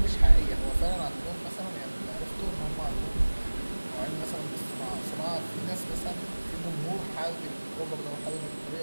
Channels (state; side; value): inverted; both; correlation -1.00